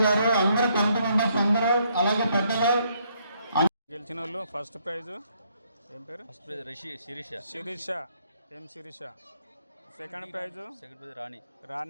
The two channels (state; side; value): inverted; both; correlation -0.71